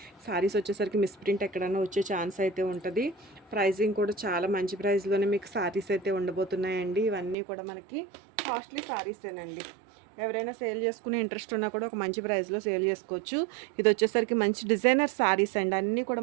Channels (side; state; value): left; drops out; at 7.4 s